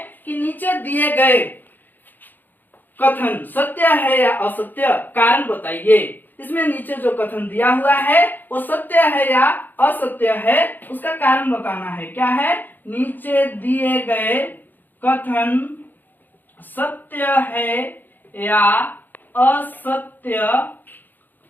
कि नीचे दिए गए कथन सत्य है या असत्य, कारण बताइए। इसमें नीचे जो कथन दिया हुआ है वो सत्य है या असत्य है, उसका कारण बताना है। क्या है, नीचे दिए गए कथन सत्य है या असत्य,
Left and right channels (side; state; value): right; late; 0.088 ms